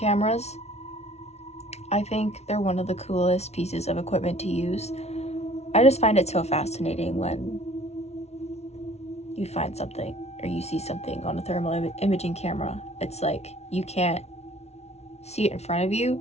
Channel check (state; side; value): late; right; 0.31 ms